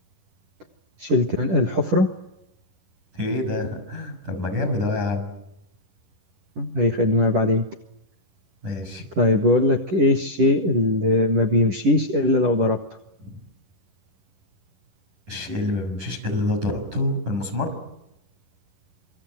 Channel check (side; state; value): left; late; 11 ms